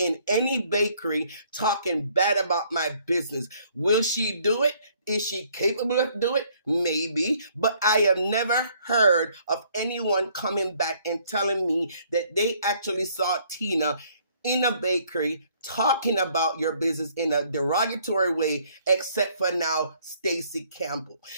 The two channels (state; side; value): inverted; both; correlation -0.63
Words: any bakery talking bad about my business. Will she do it? Is she capable of doing it? Maybe. But I have never heard of anyone coming back and telling me that they actually saw Tina in a bakery talking about your business in a derogatory way, except for now, Stacy Campbell.